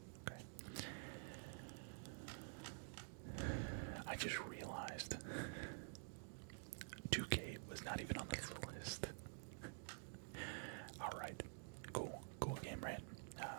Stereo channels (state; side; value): silent; left; digital silence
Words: Okay. I just realized 2K was not even on this list. Alright. Cool game, right?